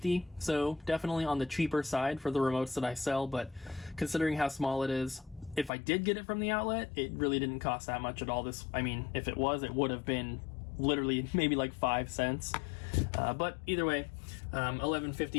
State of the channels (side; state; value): right; drops out; at 5.7 s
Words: so definitely on the cheaper side for the remotes that I sell, but considering how small it is, if I did get it from the outlet, it really didn't cost that much at all. If it was, it would have been literally maybe like 5 cents. But either way,